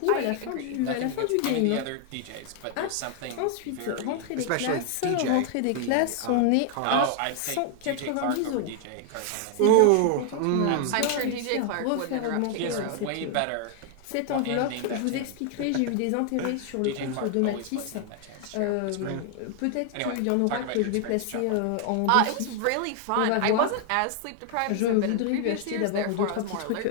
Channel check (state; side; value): different; both; correlation 0.00